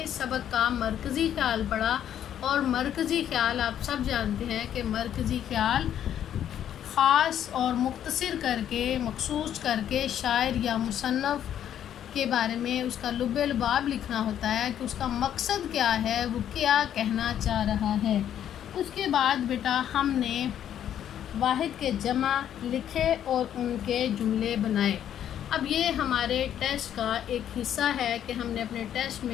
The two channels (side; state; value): right; quieter; 10.2 dB